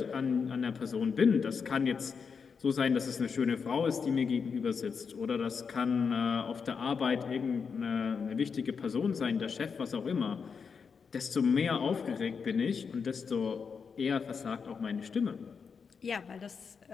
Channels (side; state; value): right; quieter; 5.8 dB